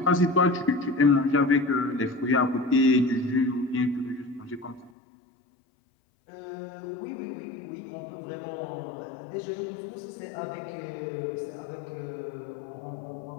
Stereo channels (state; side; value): drops out; right; at 4.9 s